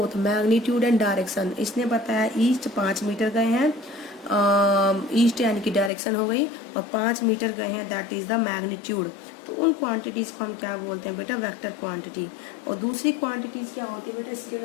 magnitude and direction. इसने बताया ईस्ट 5 मीटर गए हैं, ईस्ट यानी कि डायरेक्शन हो गई, और 5 मीटर गए हैं, दैट इज द मैग्नीट्यूड। तो उन क्वांटिटीज को हम क्या बोलते हैं बेटा, वेक्टर क्वांटिटी। और दूसरी क्वांटिटीज क्या होती है बेटा,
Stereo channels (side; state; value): right; drops out; at 5.9 s